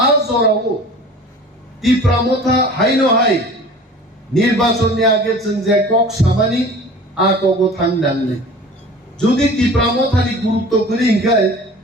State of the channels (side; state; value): both; normal; correlation 0.42